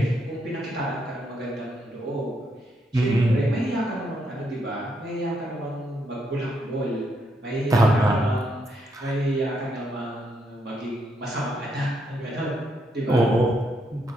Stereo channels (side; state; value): both; normal; correlation 0.78